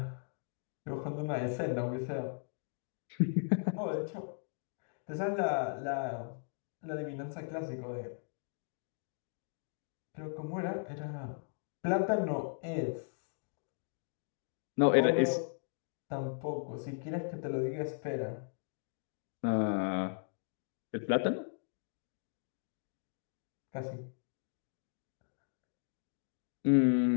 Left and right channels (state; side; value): silent; right; digital silence